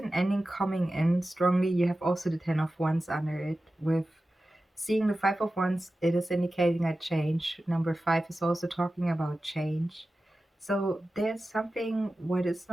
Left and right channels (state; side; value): normal; both; correlation 0.94